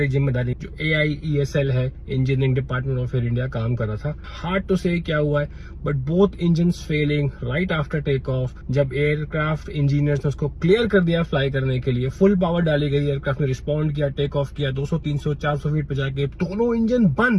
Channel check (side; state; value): both; identical; correlation 1.00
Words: जिम्मेदारी। जो AIESL है, engineering department of Air India, काम कर रहा था। हार्ड टू से क्या हुआ है, but both engines failing right after take off. जब एयरक्राफ्ट इंजीनियर्स ने उसको क्लियर कर दिया फ्लाई करने के लिए, फुल पावर डाली गई, एयरक्राफ्ट ने रिस्पॉन्ड किया, टेक ऑफ किया, 200 300 400 फीट पे जाके दोनों इंजन